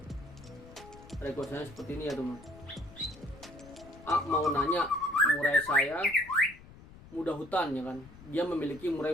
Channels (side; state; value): left; noise; rumble, 20 dB below the sound